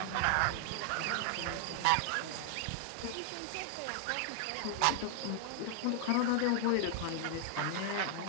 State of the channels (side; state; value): both; different; correlation 0.00